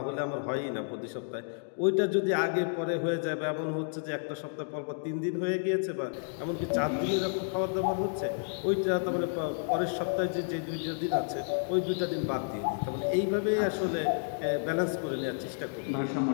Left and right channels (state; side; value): silent; right; digital silence